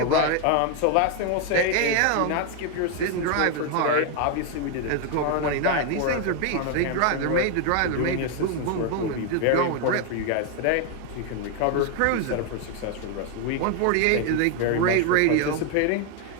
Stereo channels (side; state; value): both; different; correlation 0.01